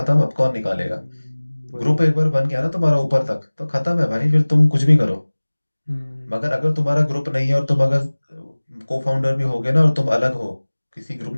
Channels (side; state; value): both; inverted; correlation -1.00